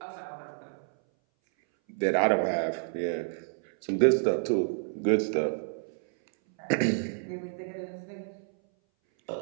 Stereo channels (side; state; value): left; silent; 58 dB below the other